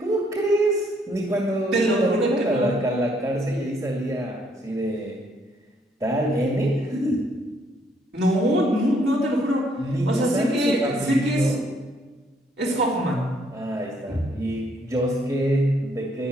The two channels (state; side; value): normal; both; correlation 0.69